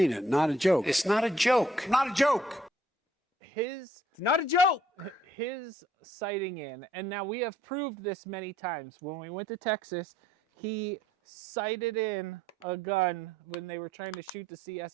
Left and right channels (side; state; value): both; normal; correlation 0.64